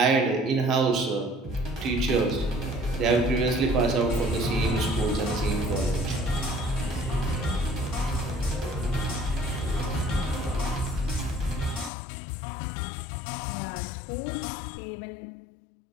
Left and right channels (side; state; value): right; drops out; at 11.9 s